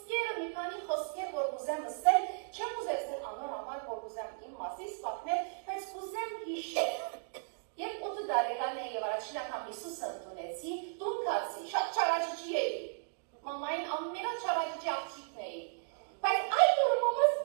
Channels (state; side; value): silent; left; 54 dB below the other